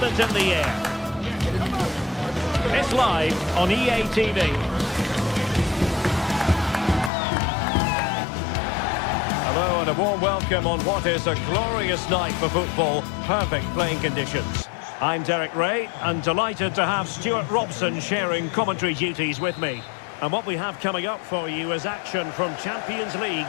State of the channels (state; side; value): drops out; right; at 7.1 s